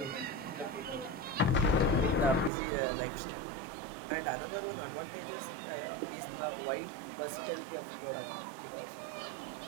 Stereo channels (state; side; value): drops out; left; at 2.5 s